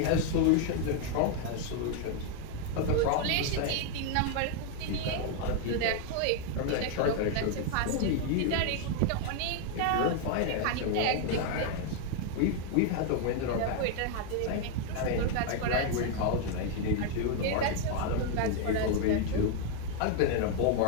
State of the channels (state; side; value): different; both; correlation 0.00